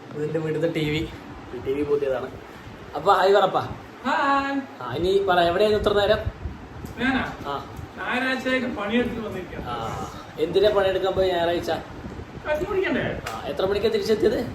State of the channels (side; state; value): both; identical; correlation 1.00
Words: ഇതിൻ്റെ വീട്ടിലത്തെ ടി വി പുതിയതാണ്. അപ്പൊ ഹായ് പറപ്പാ. ഇനി പറ, എവിടെയായിരുന്നു ഇത്ര നേരം? എന്തിനാ പണിയെടുക്കാൻ പോയി ഞായറാഴ്ച? എത്ര മണിക്കാ തിരിച്ചെത്തിയത്?